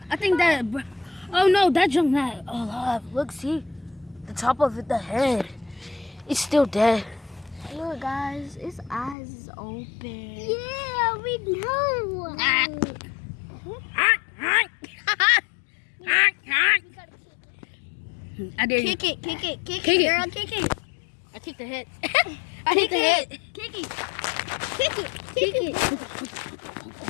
I think that. Oh no, that junk not alive. Look, see, the top of it, the head. It's still dead. Look, guys, his eyes is open. Yeah, we know. I dare you. Kick it, Kick it. girl, kick it. I kicked the head. I hit the head. Kick it.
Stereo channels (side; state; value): right; drops out; at 9.2 s